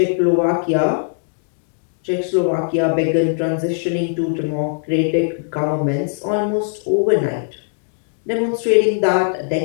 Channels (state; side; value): silent; right; digital silence